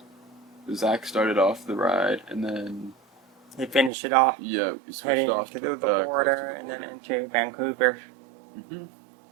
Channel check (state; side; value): drops out; left; at 3.9 s